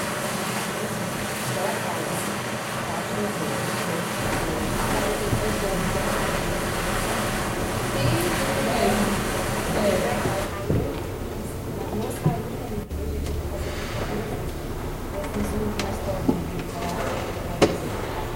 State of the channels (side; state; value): both; identical; correlation 1.00